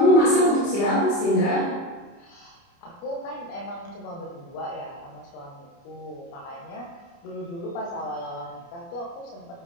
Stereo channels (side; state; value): right; late; 29 ms